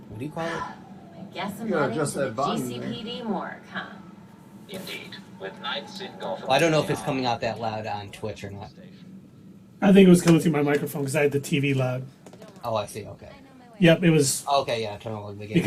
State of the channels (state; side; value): identical; both; correlation 1.00